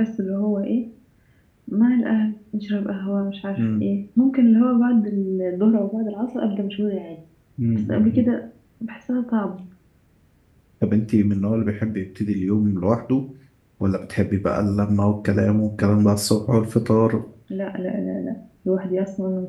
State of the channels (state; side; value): identical; both; correlation 1.00